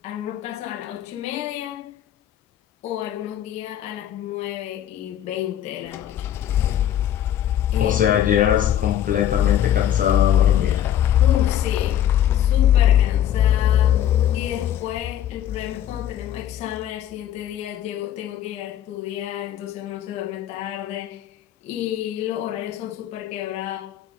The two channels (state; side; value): quieter; right; 11.1 dB